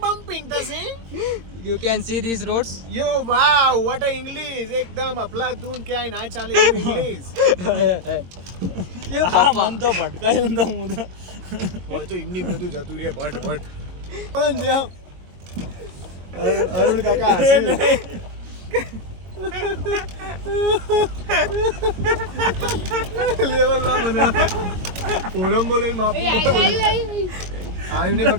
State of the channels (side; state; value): left; late; 22 ms